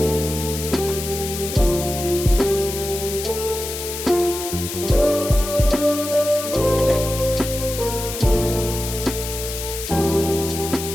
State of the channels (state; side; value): noise; left; hiss, 7 dB below the sound